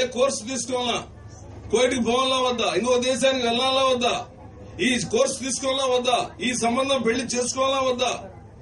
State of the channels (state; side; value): identical; both; correlation 1.00